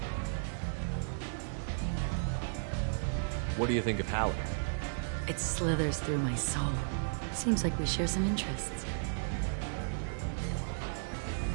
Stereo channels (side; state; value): left; silent; digital silence